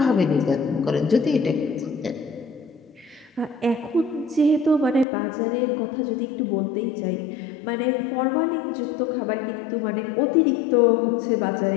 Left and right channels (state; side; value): drops out; right; at 5.1 s